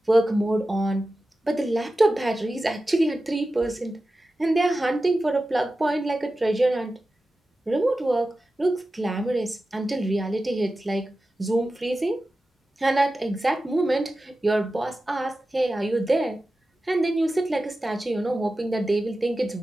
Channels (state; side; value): normal; both; correlation 0.94